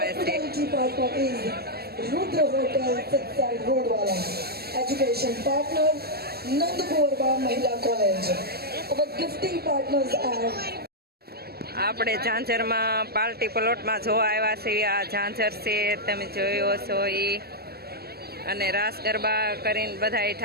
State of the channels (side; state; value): left; late; 0.46 ms